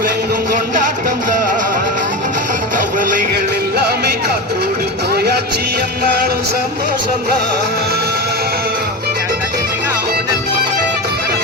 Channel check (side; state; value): both; normal; correlation 0.22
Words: கொண்டாட்டம் தான். கவலைகள் எல்லாமே காற்றோடு போயாச்சு, என்னாலும் சந்தோஷம் தான்.